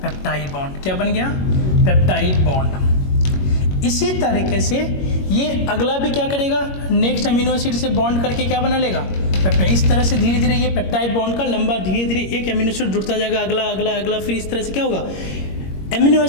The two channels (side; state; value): right; late; 21 ms